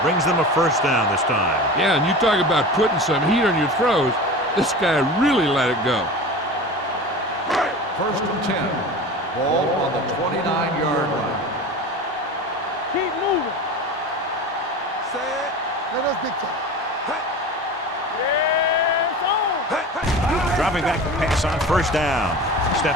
brings them a first down this time. Yeah, and you talk about putting some heat on your throws. This guy really let it go. First and 10. Ball on the 29-yard line. Keep moving. Set. Let us big time. Yes, on. Dropping back to pass on first down.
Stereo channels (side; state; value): both; normal; correlation 0.33